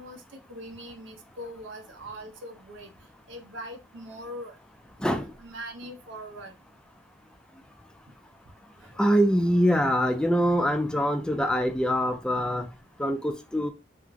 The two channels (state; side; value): normal; both; correlation 0.86